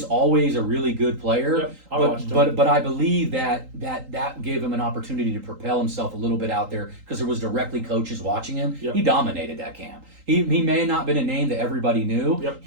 always a really good player. But I believe that gave him an opportunity to propel himself a little bit out there, because there was directly coaches watching him. He dominated that camp. He may have not been a name that everybody knew.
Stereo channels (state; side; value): late; left; 3.8 ms